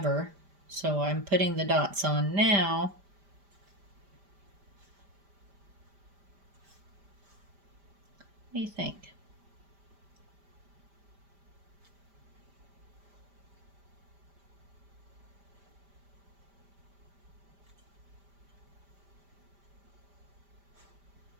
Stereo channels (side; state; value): left; late; 5.0 ms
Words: So I'm putting the dots on now. What do you think?